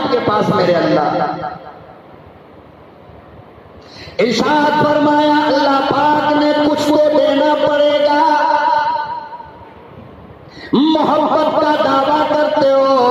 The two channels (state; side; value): identical; both; correlation 1.00